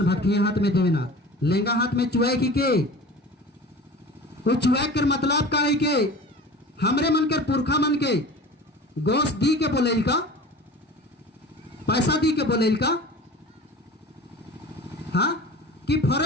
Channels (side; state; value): both; normal; correlation 0.38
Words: भक्ति हाथ में देवेना लेंगा हाथ में चुआई के वो चुआई कर मतलब का है के हमरे मन के पुरखा मन के गोश्त दी के बोलेल का, पैसा दी के बोलेल का, हाँ कि